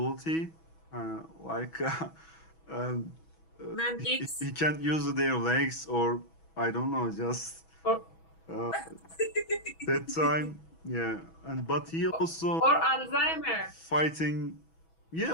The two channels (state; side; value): late; right; 6.1 ms